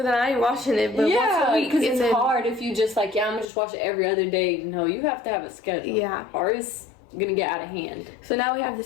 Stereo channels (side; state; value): right; drops out; at 3.5 s